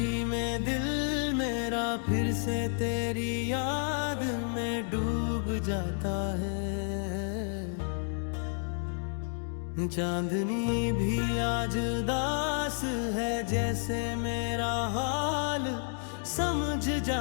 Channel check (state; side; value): silent; right; 57 dB below the other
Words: में दिल मेरा फिर से तेरी याद में डूब जाता है। चांदनी भी आज उदास है, जैसे मेरा हाल समझ